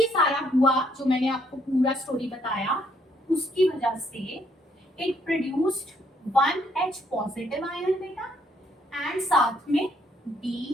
सारा हुआ जो मैंने आपको पूरा स्टोरी बताया उसकी वजह से it produced 1 H positive ion बेटा एंड साथ में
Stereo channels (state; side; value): normal; both; correlation 0.70